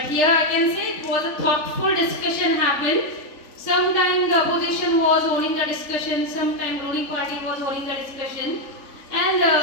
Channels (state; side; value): late; right; 3.6 ms